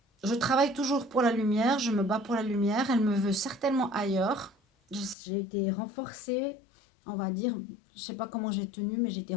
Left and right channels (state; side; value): drops out; right; at 5.2 s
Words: Je travaille toujours pour la lumière, je me bats pour la lumière, elle me veut certainement ailleurs. J'ai été renforcée, on va dire, je sais pas comment j'ai tenu, mais j'ai été